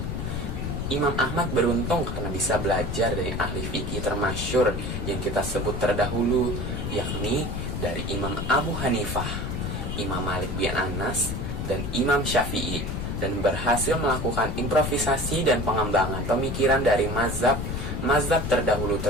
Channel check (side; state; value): left; noise; rumble, 3 dB below the sound